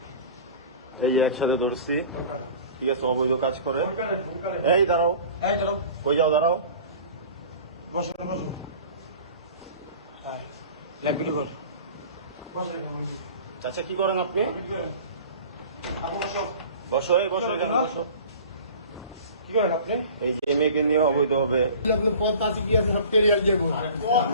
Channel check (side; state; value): both; inverted; correlation -0.42